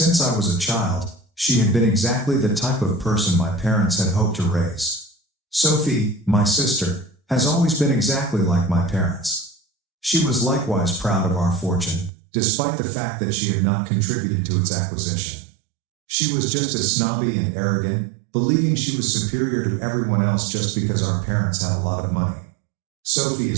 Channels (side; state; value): left; drops out; at 12.1 s